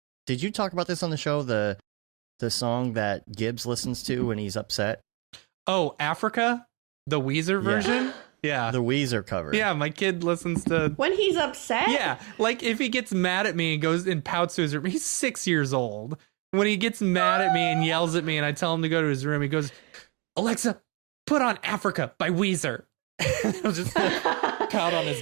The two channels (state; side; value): quieter; left; 30.9 dB